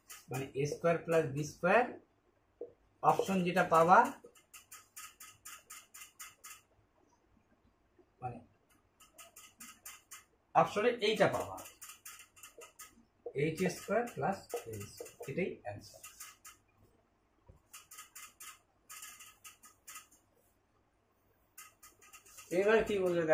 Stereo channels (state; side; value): identical; both; correlation 1.00